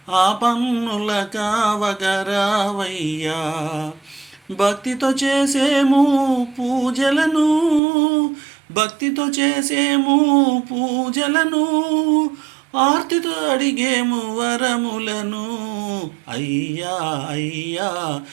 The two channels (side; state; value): left; drops out; at 7.8 s